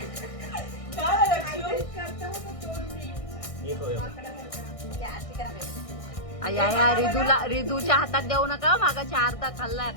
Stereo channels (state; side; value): late; right; 1.6 ms